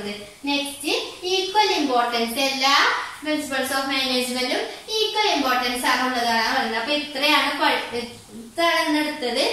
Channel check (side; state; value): both; identical; correlation 1.00